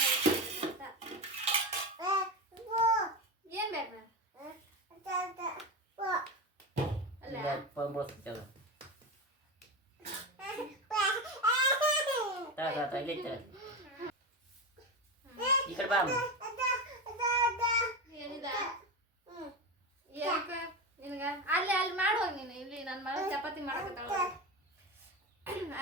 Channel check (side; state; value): both; normal; correlation 0.19